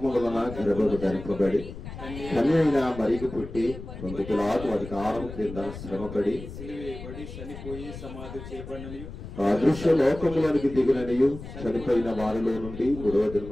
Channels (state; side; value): noise; left; rumble, 12 dB below the sound